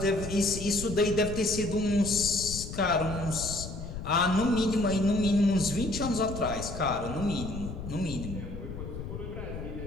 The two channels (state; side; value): noise; left; rumble, 8 dB below the sound